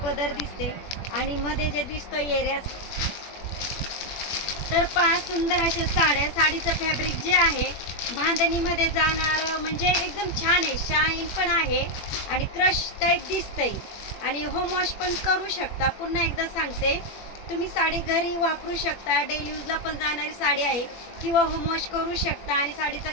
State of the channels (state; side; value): late; right; 21 ms